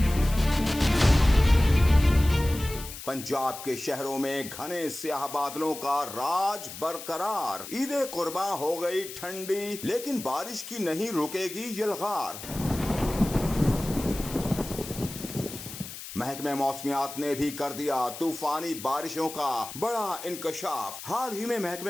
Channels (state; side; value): noise; left; hiss, 11 dB below the sound